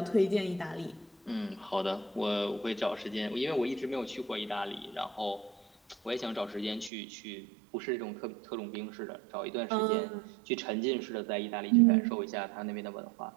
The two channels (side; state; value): left; drops out; at 6.9 s